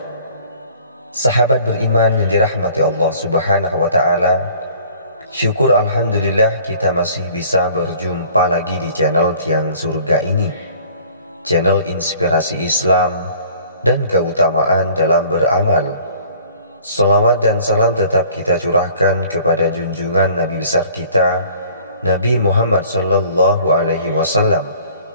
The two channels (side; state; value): both; inverted; correlation -0.52